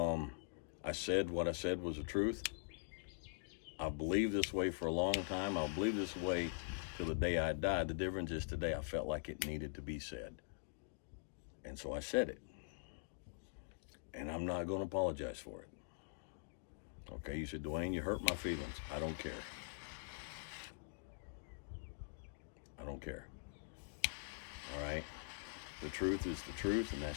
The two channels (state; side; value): silent; right; digital silence